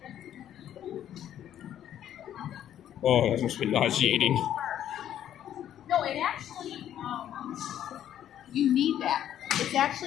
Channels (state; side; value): quieter; right; 10.8 dB